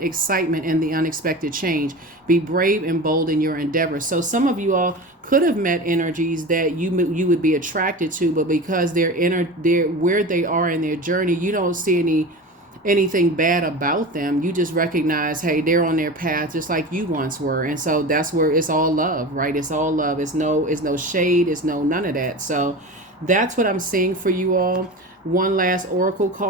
in the unexpected change. Be brave and bold in your endeavors. So some of you all could have met energies that you would be attracted to, but because they're where they are in their journey, you don't see anything bad about them. You just recognize, hey, they're on their path just like you once were. And so that's where it's all love, right? It's all love. It's no shade. It's none of that. So that's what I'm seeing for you all. One last oracle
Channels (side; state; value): both; normal; correlation 0.31